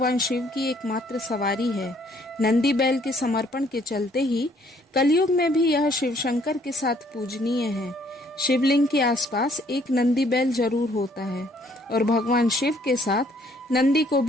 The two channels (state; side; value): normal; both; correlation 0.64